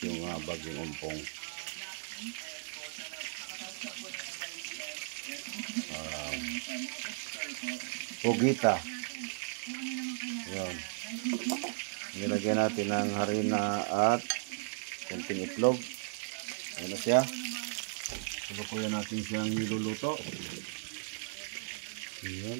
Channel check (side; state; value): left; silent; digital silence